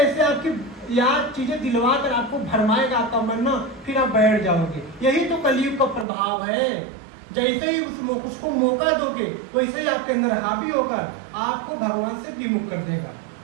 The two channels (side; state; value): left; drops out; at 6.1 s